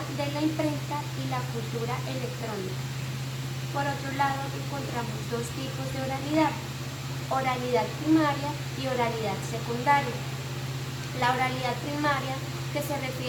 de la imprenta y la cultura electrónica. Por otro lado, encontramos 2 tipos de oralidad: oralidad primaria y oralidad secundaria. La oralidad primaria, que se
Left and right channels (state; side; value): identical; both; correlation 1.00